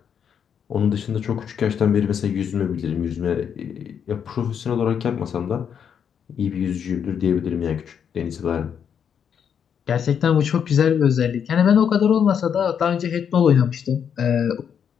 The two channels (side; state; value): right; quieter; 7.9 dB